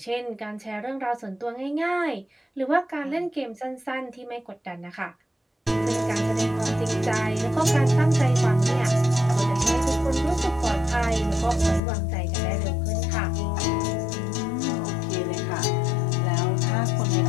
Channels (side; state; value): right; drops out; at 11.8 s